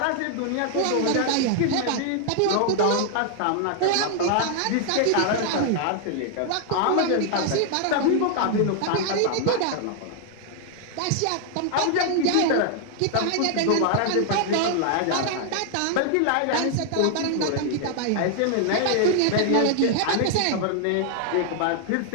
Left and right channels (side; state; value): both; different; correlation 0.00